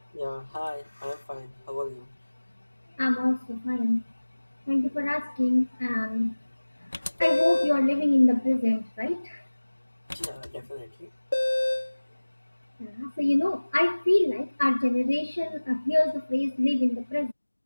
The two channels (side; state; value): both; inverted; correlation -1.00